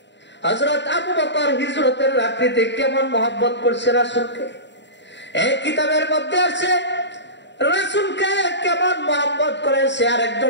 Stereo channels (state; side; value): late; right; 0.52 ms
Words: হযরত আবু বকর হিজরতের রাত্রিতে কেমন মহব্বত করছে রাসূলকে। এই কিতাবের মধ্যে আছে রাসূলকে কেমন মহব্বত করেছে